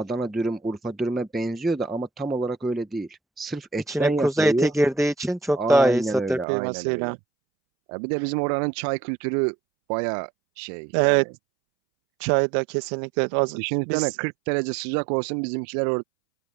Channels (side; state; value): left; drops out; at 6.5 s